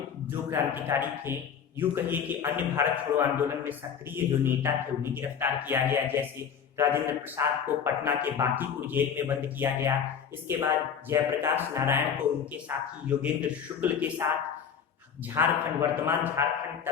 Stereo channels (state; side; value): quieter; right; 7.5 dB